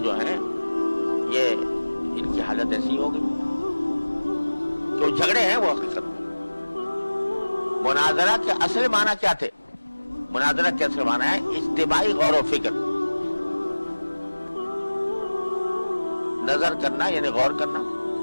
جو ہیں یہ ان کی حالت ایسی ہو گئی کہ وہ جھگڑے ہیں. وہ حقیقت میں مناظرہ کے اصل معنی کیا تھے؟ مناظرہ کے اصل معنی ہے اجتماعی غور و فکر، نظر کرنا یعنی غور کرنا.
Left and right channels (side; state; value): both; inverted; correlation -1.00